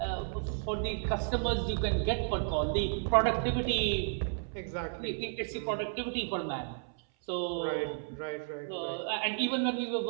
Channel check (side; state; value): left; silent; 56 dB below the other